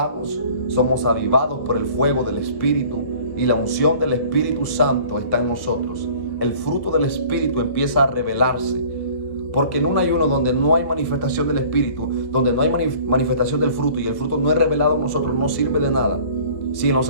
somos avivados por el fuego del Espíritu, y la unción del Espíritu Santo está en nosotros. El fruto del Espíritu empieza a revelarse, porque en un ayuno donde no hay manifestación del Espíritu, donde no hay manifestación del fruto y el fruto no es revelado en nosotros, no sirve de nada. Si en los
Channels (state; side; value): late; right; 1.1 ms